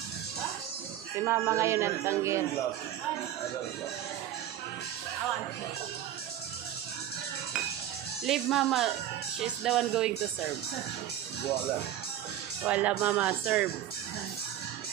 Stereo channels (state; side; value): quieter; left; 11.7 dB